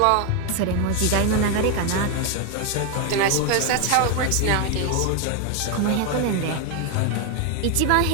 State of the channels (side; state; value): both; different; correlation 0.01